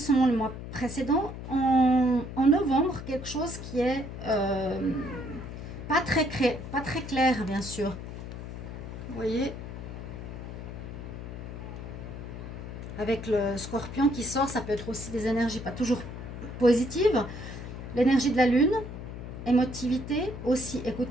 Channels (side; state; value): left; noise; hum, 9 dB below the sound